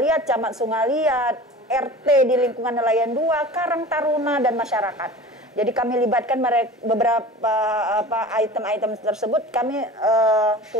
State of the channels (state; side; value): normal; both; correlation 0.38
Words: Camat Sungaliat, RT di lingkungan nelayan 2, Karang Taruna dan masyarakat. Jadi kami libatkan beberapa item-item tersebut kami